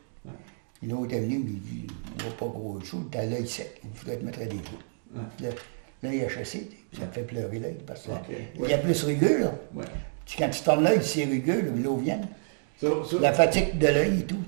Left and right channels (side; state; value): left; silent; digital silence